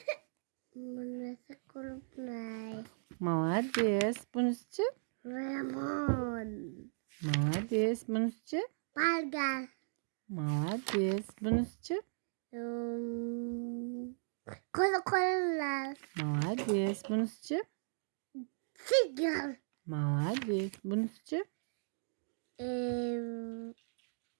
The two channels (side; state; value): left; silent; digital silence